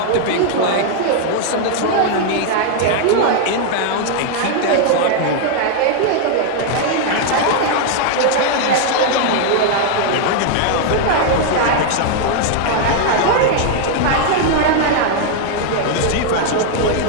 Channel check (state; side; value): different; both; correlation 0.00